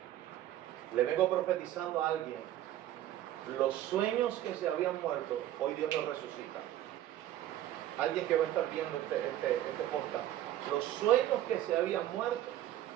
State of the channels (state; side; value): quieter; left; 12.9 dB